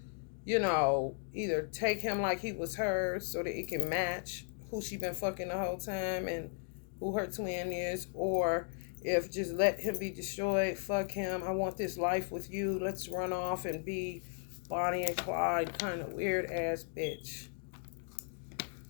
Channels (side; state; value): right; silent; 54 dB below the other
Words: you know, either take him like he was hers so that it can match who she been fucking the whole time and who her twin is, or if just let him be destroyed, fuck him, I want this life with you, let's run off and be Bonnie and Clyde kind of weird ass bitch.